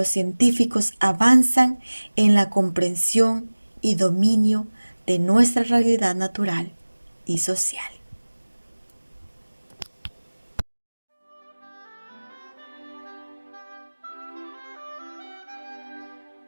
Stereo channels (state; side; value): inverted; both; correlation -1.00